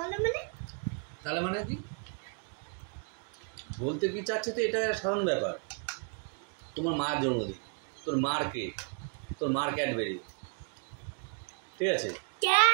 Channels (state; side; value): quieter; left; 38.7 dB